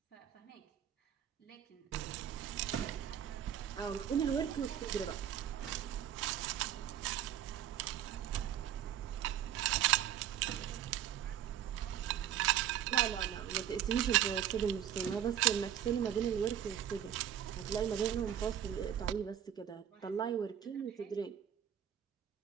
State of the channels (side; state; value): left; quieter; 10.1 dB